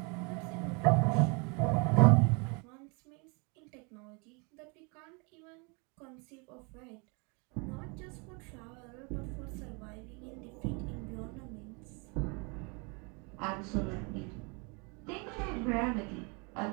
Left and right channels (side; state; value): left; quieter; 32.1 dB